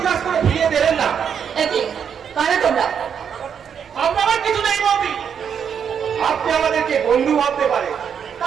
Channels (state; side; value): quieter; left; 7.6 dB